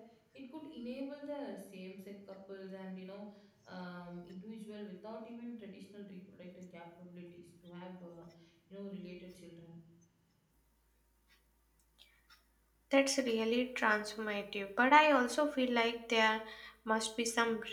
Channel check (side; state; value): both; identical; correlation 1.00